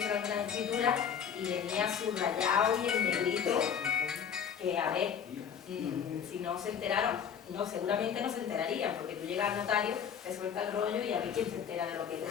algunas escrituras y venía subrayado y en negrito, que a ver, si no se enteraron, no, seguramente no se enterarían, porque tú llegas al notario, te suelta el rollo y a ver quién se entera de lo que te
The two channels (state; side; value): quieter; right; 7.8 dB